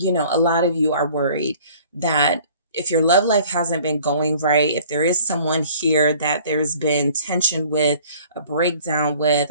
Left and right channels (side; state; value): both; inverted; correlation -0.52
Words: lot of you are worried that if your love life hasn't been going right, if there is someone here that there's been tension with, a breakdown with,